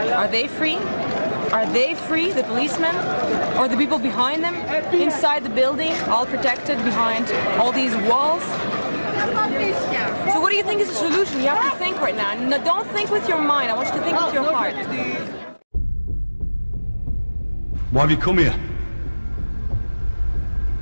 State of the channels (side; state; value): both; inverted; correlation -1.00